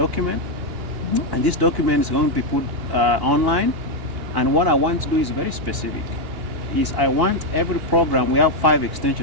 And this document is going to be put online. And what I want to do is very specific. Is I want every program, we have 5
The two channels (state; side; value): late; left; 2.8 ms